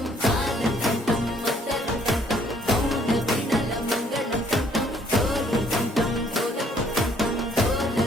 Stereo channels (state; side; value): normal; both; correlation 0.64